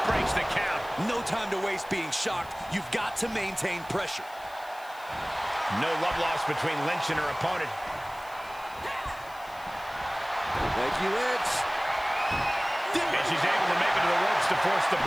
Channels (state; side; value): noise; left; hiss, 22 dB below the sound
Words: breaks the count. No time to waste being shocked. You've got to maintain pressure. No love lost between Lynch and her opponent. Becky Lynch. And she's able to make it to the ropes to force the